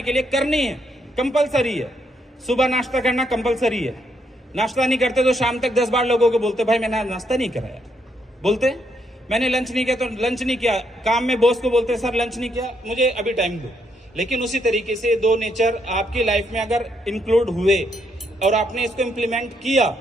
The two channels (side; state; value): both; normal; correlation 0.75